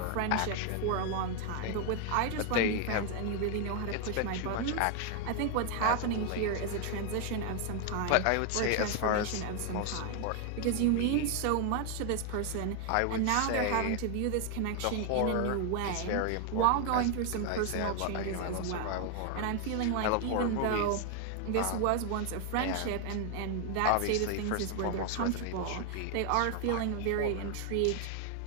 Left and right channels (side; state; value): both; different; correlation 0.01